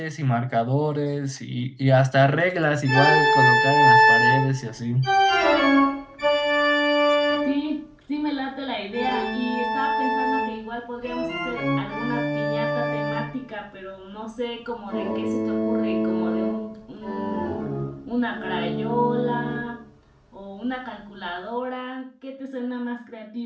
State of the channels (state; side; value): identical; both; correlation 1.00